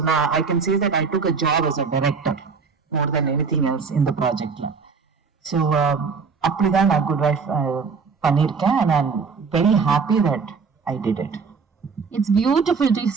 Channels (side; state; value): left; quieter; 5.2 dB